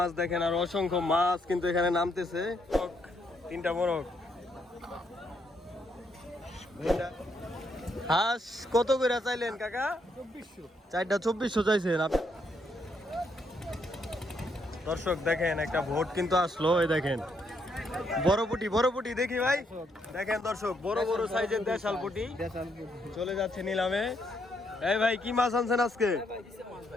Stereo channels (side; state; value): both; normal; correlation 0.75